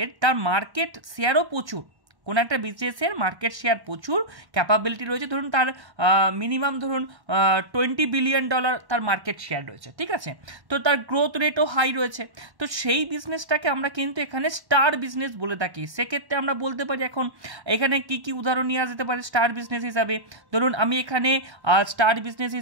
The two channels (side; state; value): left; late; 1.1 ms